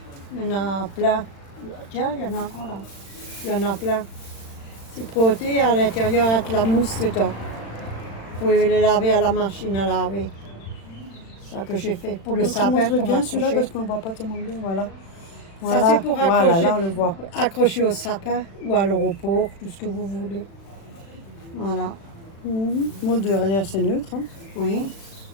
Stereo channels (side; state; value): right; late; 36 ms